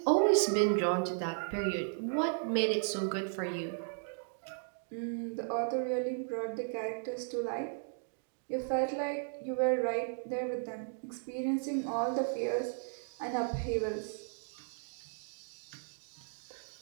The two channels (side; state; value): left; silent; digital silence